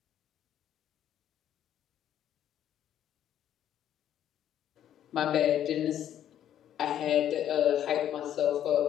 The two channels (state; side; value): quieter; right; 10.7 dB